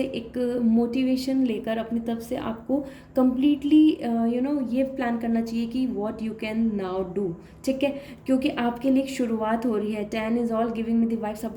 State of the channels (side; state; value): both; identical; correlation 1.00